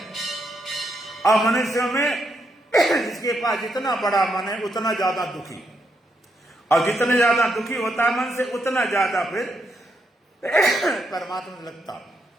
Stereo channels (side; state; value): both; normal; correlation 0.79